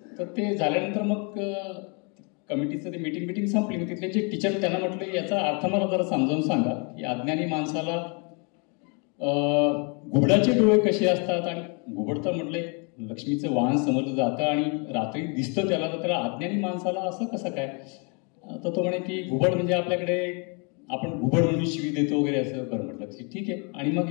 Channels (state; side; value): quieter; right; 35.1 dB